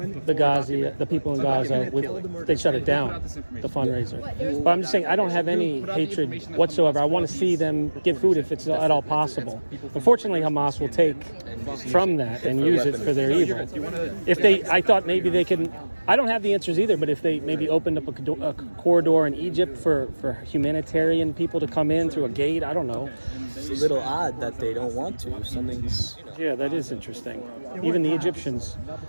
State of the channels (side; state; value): both; inverted; correlation -1.00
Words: people in Gaza. They shut it down, the fundraiser. But I'm just saying, I don't have any hatred whatsoever. I want to see them get food if it's at all possible. Unfortunately, Hamas will take from that and use it for their evil. I thought maybe they can. I don't have the answers either, but if they maybe opened up a corridor in Egypt for humanitarian people to come in through a gate, I don't know. it's a little odd that they don't want to. Something's, Yeah, that is interesting. Even the Egyptians